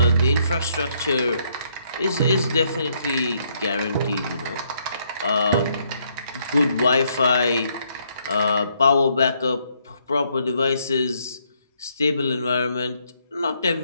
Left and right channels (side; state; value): both; inverted; correlation -0.72